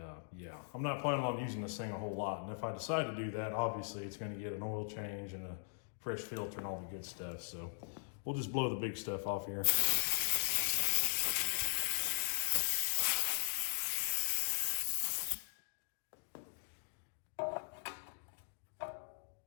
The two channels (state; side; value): silent; right; digital silence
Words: yeah, I'm not planning on using this thing a whole lot. And if I decide to do that, obviously it's gonna get an oil change and a fresh filter and all the good stuff. So we'll just blow the big stuff off here.